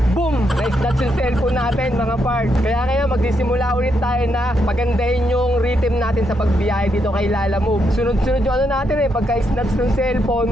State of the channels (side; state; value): both; normal; correlation 0.79